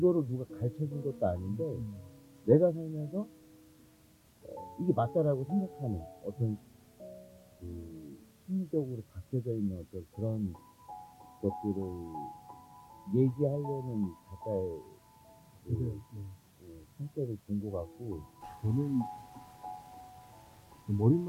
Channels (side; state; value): both; identical; correlation 1.00